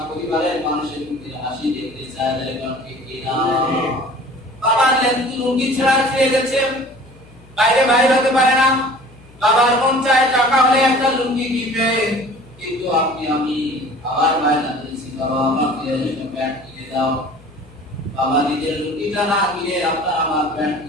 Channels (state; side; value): noise; left; hum, 24 dB below the sound